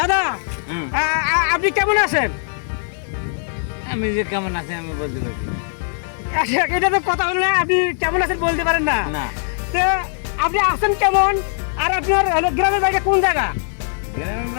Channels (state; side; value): silent; right; digital silence